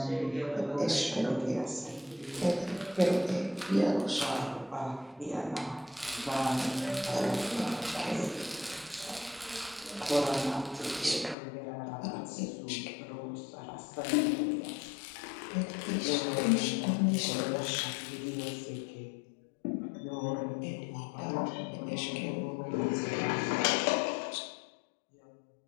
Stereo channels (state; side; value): drops out; right; at 11.4 s